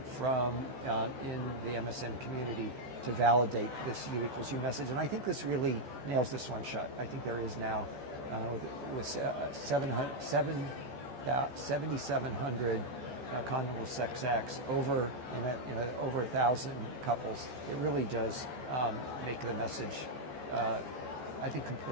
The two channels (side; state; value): left; late; 14 ms